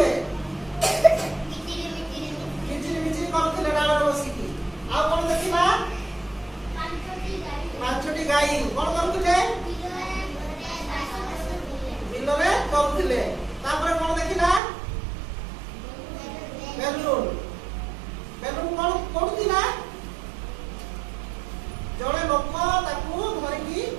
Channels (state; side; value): drops out; left; at 14.6 s